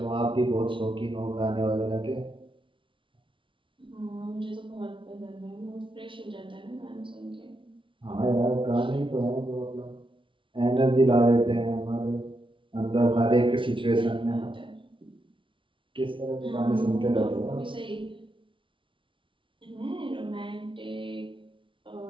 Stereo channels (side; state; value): left; late; 0.25 ms